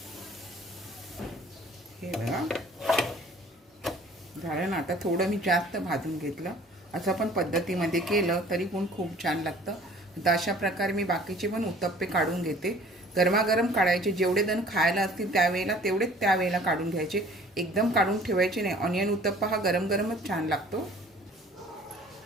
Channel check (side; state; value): both; normal; correlation 0.51